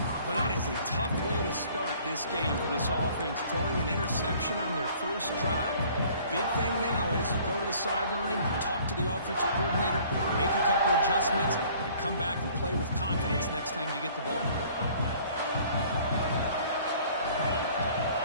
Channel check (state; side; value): inverted; both; correlation -0.54